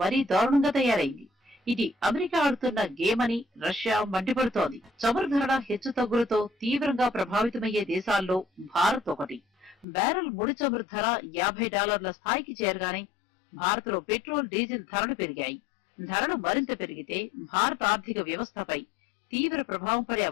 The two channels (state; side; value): drops out; right; at 9.9 s